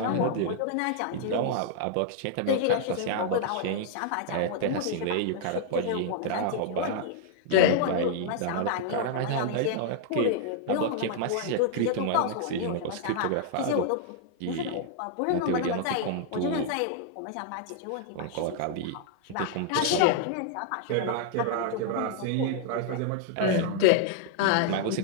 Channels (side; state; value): both; different; correlation -0.01